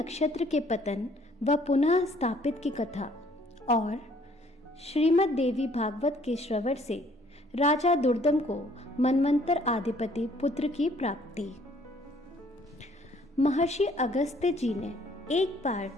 के पतन व पुनः स्थापित की कथा और श्रीमद् देवी भागवत के श्रवण से राजा दुर्दम को मनवंतर आधिपति पुत्र की प्राप्ति। महर्षि अगस्त्य जी ने एक बार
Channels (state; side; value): normal; both; correlation 0.61